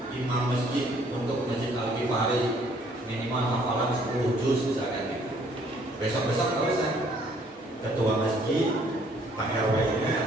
imam masjid untuk Masjid Al-Ghifari minimal hafalan 10 juz misalkan gitu. Besok-besok kalau saya ketua masjid, Pak RW-nya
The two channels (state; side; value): normal; both; correlation 0.62